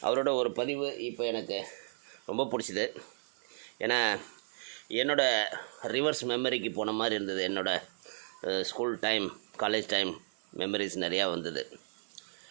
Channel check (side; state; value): left; silent; digital silence